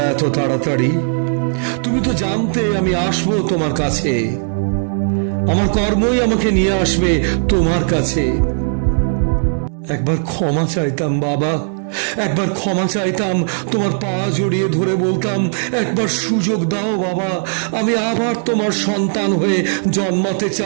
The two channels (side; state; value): left; silent; digital silence